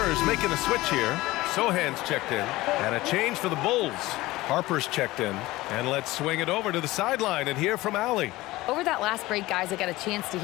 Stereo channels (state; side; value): quieter; right; 18.7 dB